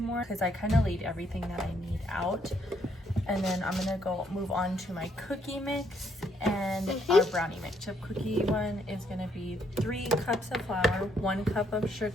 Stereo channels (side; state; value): both; normal; correlation 0.71